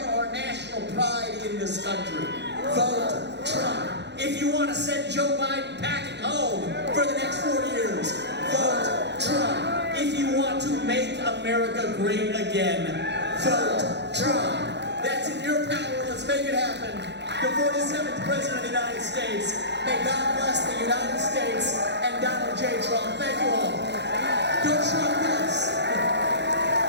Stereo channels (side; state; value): left; late; 0.50 ms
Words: our national pride in this country, vote Trump. If you want to send Joe Biden packing home for the next 4 years, vote Trump. If you want to make America great again, vote Trump. That's in your power. Let's make it happen. The 47th President of the United States. May God bless the United States and Donald J. Trump. Thank you all. Go Trump, yes.